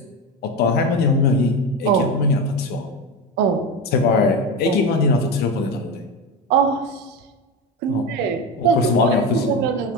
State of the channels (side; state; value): both; normal; correlation 0.20